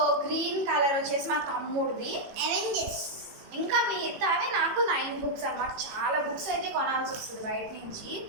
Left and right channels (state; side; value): late; left; 18 ms